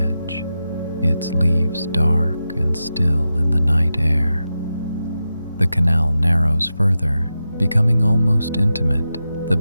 its leaves dark and still in the night air. The canal narrows further, becoming almost intimate, the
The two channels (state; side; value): inverted; both; correlation -0.90